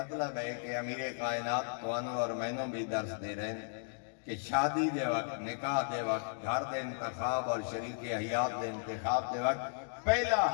ہے کہ امیر کائنات توانو اور مینوں بھی درس دے رہے ہیں کہ شادی دے وقت نکاح دے وقت گھر دے انتخاب اور شریک حیات دے انتخاب دے وقت پہلا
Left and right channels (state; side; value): silent; right; digital silence